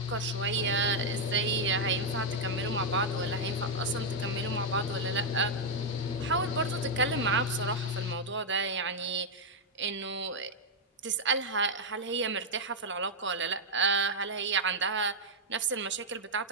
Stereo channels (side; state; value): both; normal; correlation -0.02